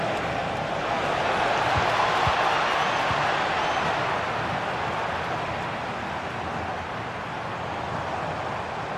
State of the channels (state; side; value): identical; both; correlation 1.00